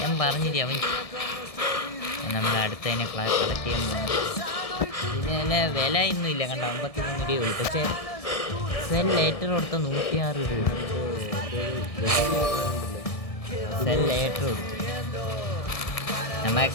പറഞ്ഞില്ലേ അവൻ നമ്മൾ അടുത്തതിനെ കളക്ട് ചെയ്യാൻ പോകുന്നു. ഇതിന് വില ഒന്നും ഇല്ല കണ്ട, 53 രൂപയുള്ളൂ. പക്ഷേ സെൽ ലേറ്റർ കൊടുത്ത 106 രൂപ. സെൽ ലേറ്റർ കൊടുത്തു.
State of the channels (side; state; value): right; late; 1.6 ms